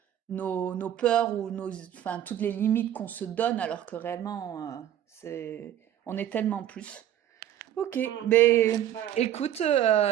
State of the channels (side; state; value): left; quieter; 11.3 dB